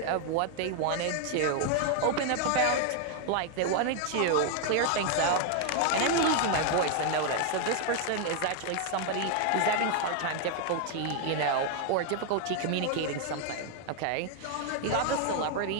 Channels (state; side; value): different; both; correlation 0.00